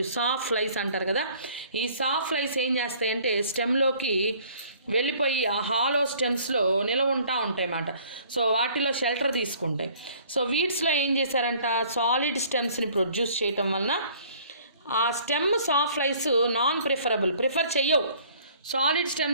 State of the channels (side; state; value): both; inverted; correlation -0.55